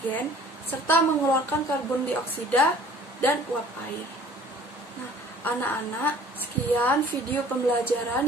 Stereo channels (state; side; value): normal; both; correlation 0.51